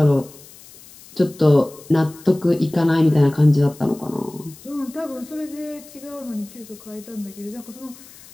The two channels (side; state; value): left; noise; hiss, 21 dB below the sound